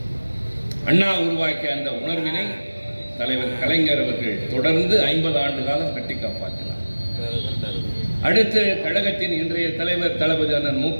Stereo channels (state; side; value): inverted; both; correlation -1.00